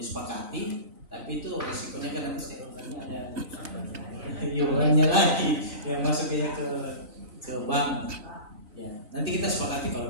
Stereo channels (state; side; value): late; left; 3.9 ms